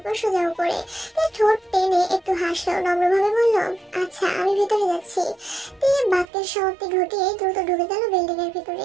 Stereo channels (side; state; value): left; drops out; at 6.2 s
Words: সোজা উপরে তে ঠোঁট টেনে একটু হাসলো, নম্রভাবে বলল, আচ্ছা আমি ভিতরে যাচ্ছি। তে বাক্যের সমাপ্তি ঘটিয়ে দ্রুত ঢুকে গেল বিল্ডিং এর ভিতরে।